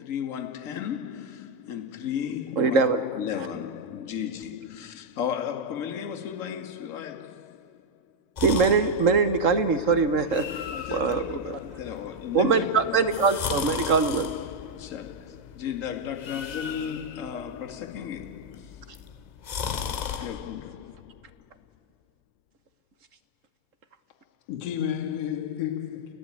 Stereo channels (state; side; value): late; right; 2.0 ms